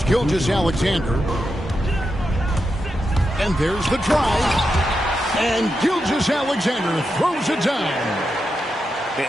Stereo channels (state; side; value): normal; both; correlation 0.87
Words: Gilgeous-Alexander. And there's the drive. And Gilgeous-Alexander throws it down.